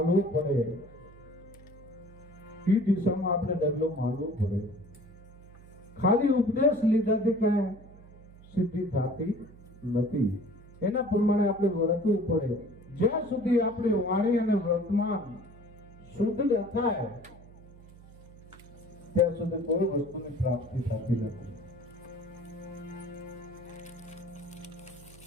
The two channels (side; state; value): right; noise; hum, 21 dB below the sound